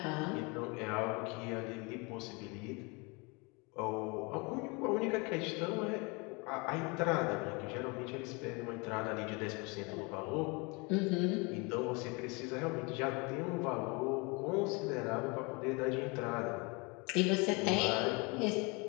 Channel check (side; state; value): right; quieter; 29.0 dB